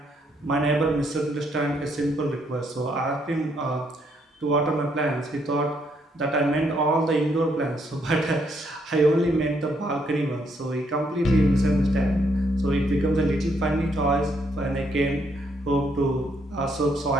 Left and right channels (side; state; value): both; normal; correlation 0.73